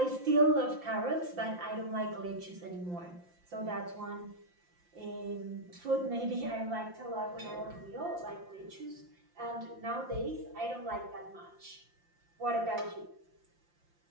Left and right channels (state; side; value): late; left; 5.7 ms